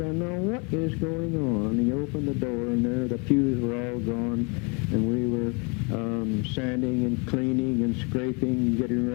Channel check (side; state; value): right; quieter; 32.7 dB